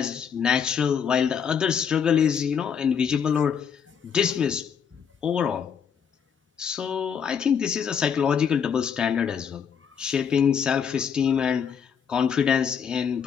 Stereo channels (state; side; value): quieter; right; 7.3 dB